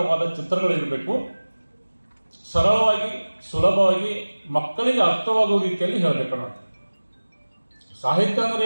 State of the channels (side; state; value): both; inverted; correlation -1.00